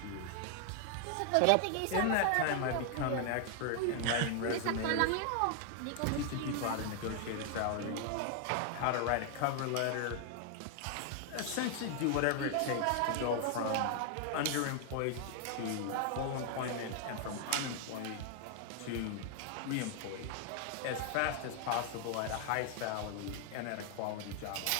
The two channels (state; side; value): different; both; correlation 0.00